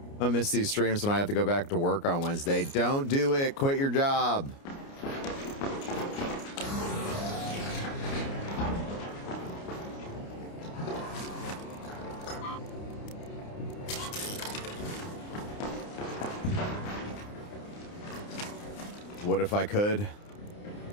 I miss these streams when I have to go back to work on Wednesday. Don't do it. Quit your job. What if I could?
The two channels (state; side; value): late; right; 29 ms